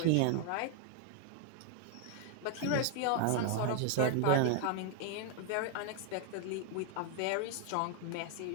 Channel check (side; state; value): both; different; correlation 0.00